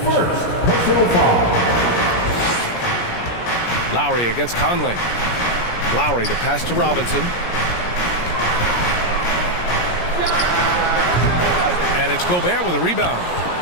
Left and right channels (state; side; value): late; right; 17 ms